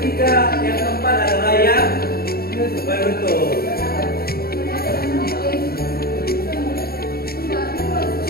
yang keempat adalah yang penutup.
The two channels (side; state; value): right; late; 0.44 ms